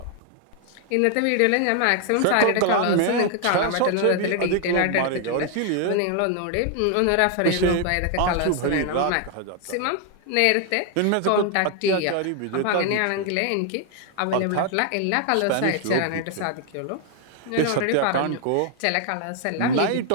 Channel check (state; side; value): different; both; correlation 0.00